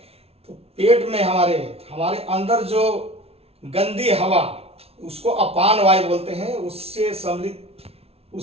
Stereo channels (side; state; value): left; late; 0.29 ms